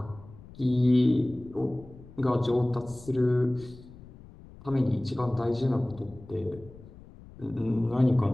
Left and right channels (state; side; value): noise; left; rumble, 19 dB below the sound